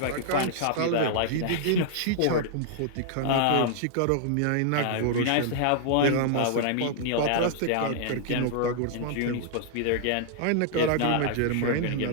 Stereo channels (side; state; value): both; different; correlation -0.01